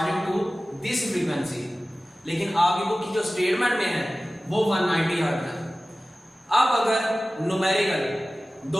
to this frequency, लेकिन आपकी बुक की जो स्टेटमेंट में है वो 190 हर्ट्ज है। अब अगर न्यूमेरिकल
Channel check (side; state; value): both; normal; correlation 0.97